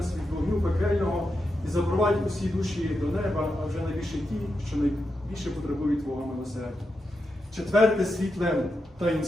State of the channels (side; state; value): both; normal; correlation 0.87